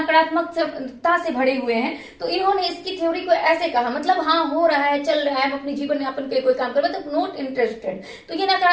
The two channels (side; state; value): both; identical; correlation 1.00